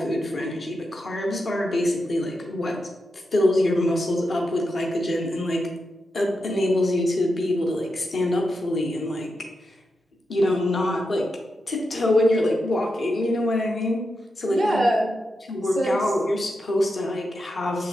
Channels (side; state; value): both; normal; correlation 0.87